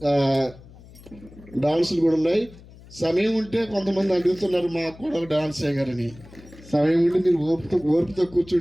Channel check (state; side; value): noise; left; hum, 21 dB below the sound